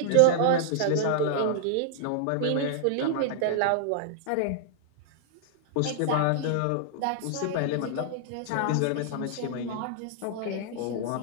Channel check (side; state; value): both; different; correlation -0.01